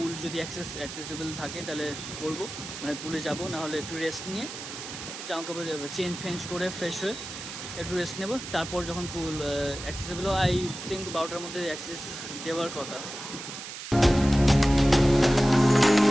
যদি অ্যাক্সেসিবল থাকে তাহলে করবো, মানে পুলে যাব, না হলে একটু রেস্ট নিয়ে জামা কাপড় চেঞ্জ করে ফ্রেশ হয়ে একটু রেস্ট নেব, তারপর যখন পুল অ্যাক্সেসিবল হয়, আই থিঙ্ক 12টার মধ্যে অ্যাক্সেস দেওয়ার কথা।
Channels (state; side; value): noise; right; hiss, 10 dB below the sound